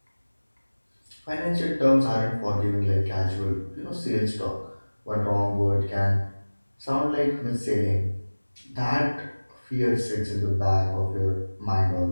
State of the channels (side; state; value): both; inverted; correlation -1.00